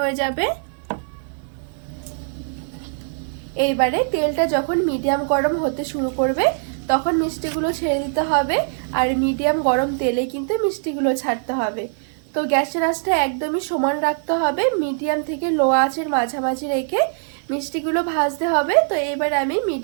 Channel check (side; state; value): left; silent; digital silence